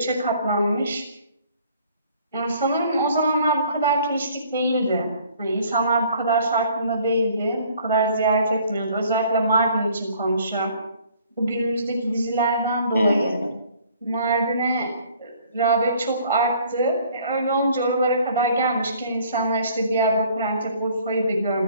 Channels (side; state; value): both; inverted; correlation -0.57